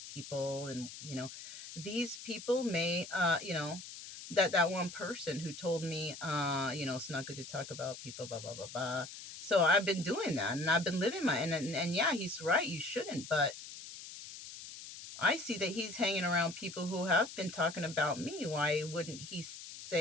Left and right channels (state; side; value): noise; left; hiss, 12 dB below the sound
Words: people. And, these people may, that one person who told me, it's not good to talk about people, blah, blah, blah, blah. So I've been doing that, and I've been living and yeah, he's right. You shouldn't. But I see that he's hanging around people who have been talking about me. Why wouldn't he